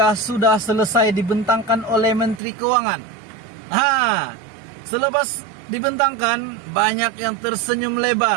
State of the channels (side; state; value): left; drops out; at 2.4 s